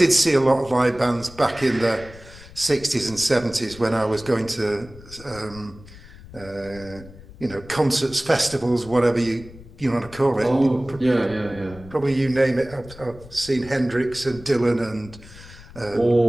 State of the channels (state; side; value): noise; left; rumble, 19 dB below the sound